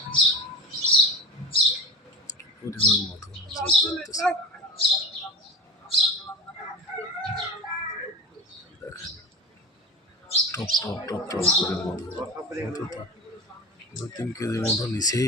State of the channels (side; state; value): both; normal; correlation 0.32